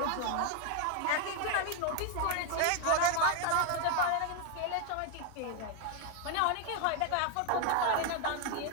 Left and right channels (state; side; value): different; both; correlation 0.01